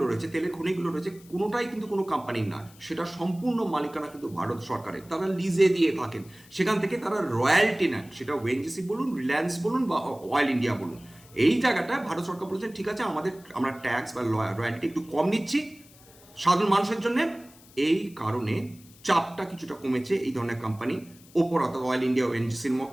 রয়েছে, তেলের খনিগুলো রয়েছে, কোনোটাই কিন্তু কোনো কোম্পানির না, সেটা সম্পূর্ণ মালিকানা কিন্তু ভারত সরকারের। তারা লিজে দিয়ে থাকেন, সেখান থেকে তারা রয়্যালটি নেন, সেটা ওএনজিসি বলুন, রিলায়েন্স বলুন বা অয়েল ইন্ডিয়া বলুন। এই জায়গাটা ভারত সরকার বলেছেন ঠিক আছে, আমরা ট্যাক্স বা রয়্যালটি একটু কম নিচ্ছি সাধারণ মানুষের জন্য। এই কারণে চাপটা কিছুটা কমেছে এই ধরনের কোম্পানি ওপর, অর্থাৎ অয়েল ইন্ডিয়া, ওএনজিসির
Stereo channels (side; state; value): left; noise; hiss, 24 dB below the sound